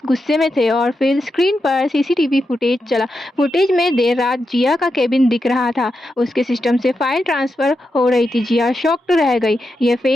गुस्से में थे और फिर स्क्रीन पर सीसीटीवी फुटेज चला। फुटेज में देर रात जिया का केबिन दिख रहा था। उसके सिस्टम से फाइल ट्रांसफर हो रही थी। जिया शॉक्ड रह गई। ये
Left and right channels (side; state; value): both; normal; correlation 0.87